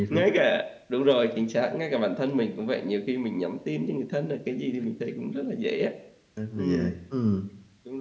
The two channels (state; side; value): identical; both; correlation 1.00